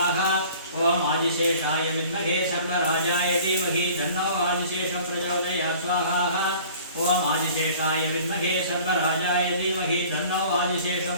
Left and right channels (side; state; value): both; inverted; correlation -0.48